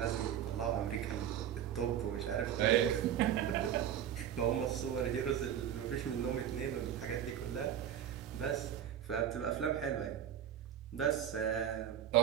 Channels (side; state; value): left; quieter; 9.9 dB